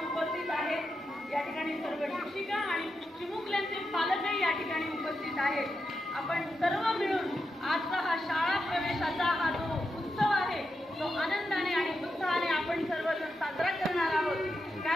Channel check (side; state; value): both; normal; correlation 0.87